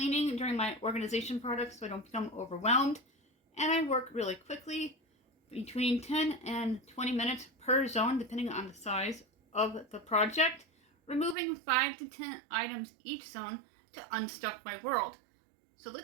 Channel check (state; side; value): drops out; left; at 11.4 s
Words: during my organization projects so I don't become overwhelmed, and I work really quickly, between 10 and 20 minutes per zone, depending on the size of the project, removing 5 to 10 items each zone to unstuck my world. So